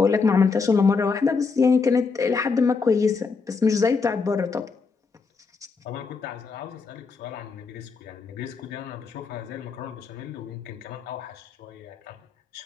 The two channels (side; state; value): right; quieter; 4.8 dB